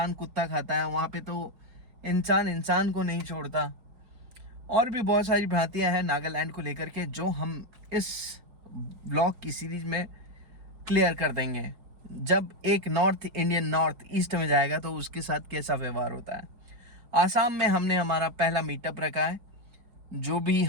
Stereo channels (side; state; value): left; late; 4.7 ms